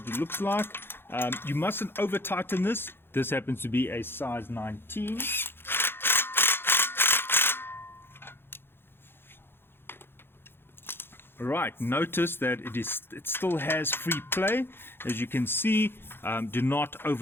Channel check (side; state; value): right; late; 0.11 ms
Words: it looks like. You mustn't over tighten this. This happens to be a size 19. Right, notice that it still has free play. As you can see, do not